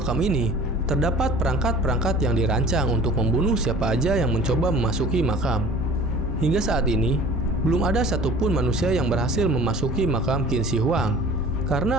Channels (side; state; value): both; normal; correlation 0.45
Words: ini terdapat perangkat-perangkat yang dirancang untuk membunuh siapa aja yang mencoba memasuki makam. Hingga saat ini, belum ada satupun manusia yang berhasil memasuki makam Qin Shi Huang